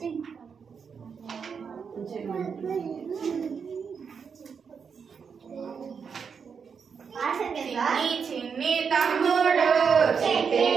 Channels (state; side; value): quieter; left; 6.2 dB